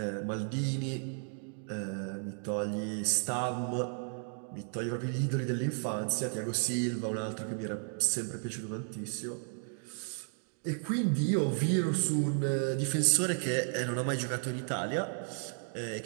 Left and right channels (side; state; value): left; silent; 55 dB below the other